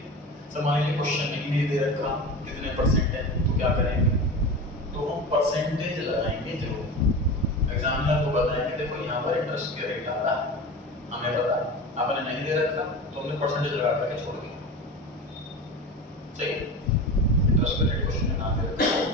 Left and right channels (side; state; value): both; normal; correlation 0.29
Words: सर मान लीजिए क्वेश्चन नहीं दे रखा कितने परसेंट है, तो क्या करेंगे, तो हम परसेंटेज लगाएंगे जरूर। एग्जामिनर को बताएंगे देखो यहाँ पर इंटरेस्ट के रेट आ रहा है, हमें पता, आपने नहीं दे रखा तो हमने परसेंटेज लगा करके छोड़ दिया, सही। इंटरेस्ट के रेट क्वेश्चन में नाम दे रखा,